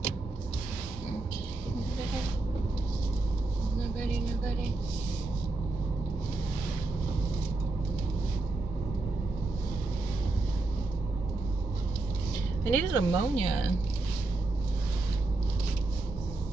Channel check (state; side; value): quieter; left; 3.2 dB